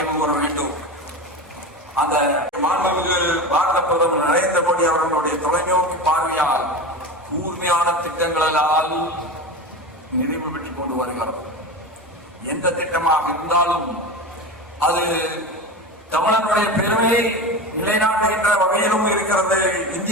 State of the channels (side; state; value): both; normal; correlation 0.26